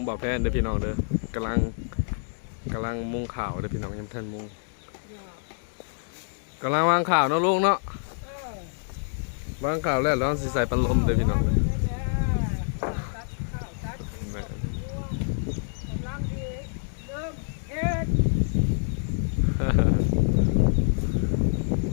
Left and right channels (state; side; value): silent; right; digital silence